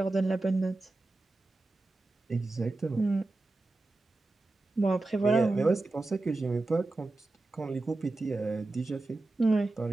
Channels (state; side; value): quieter; left; 3.0 dB